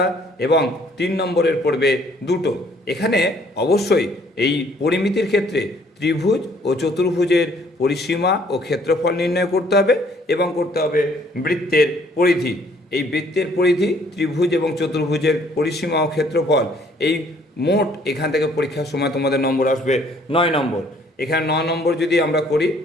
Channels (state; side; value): normal; both; correlation 0.61